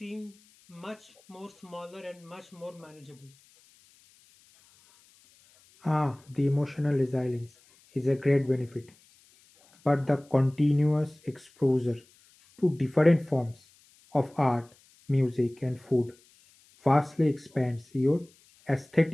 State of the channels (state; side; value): noise; left; hiss, 30 dB below the sound